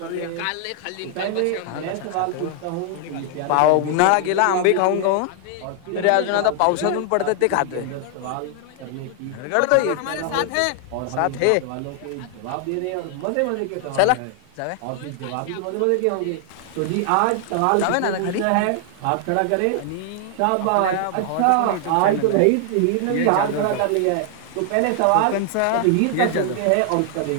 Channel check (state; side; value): different; both; correlation 0.00